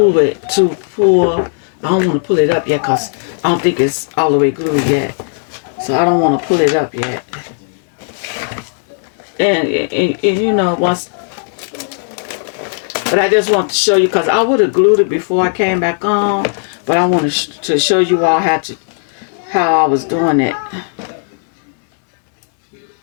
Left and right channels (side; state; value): right; silent; digital silence